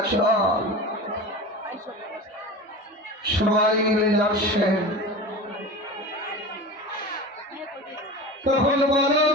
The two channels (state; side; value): normal; both; correlation 0.31